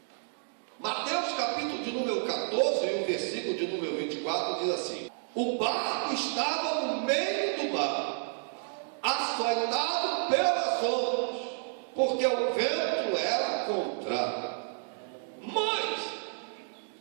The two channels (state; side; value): silent; left; 55 dB below the other